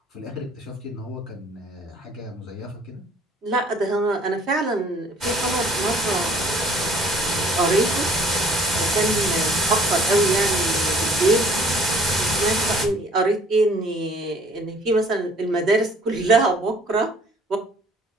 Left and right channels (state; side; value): normal; both; correlation 0.55